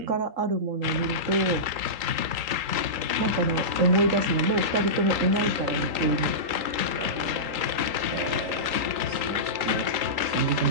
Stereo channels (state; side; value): late; left; 3.8 ms